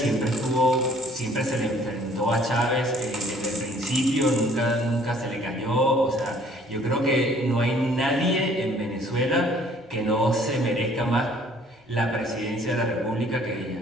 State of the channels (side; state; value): both; normal; correlation 0.58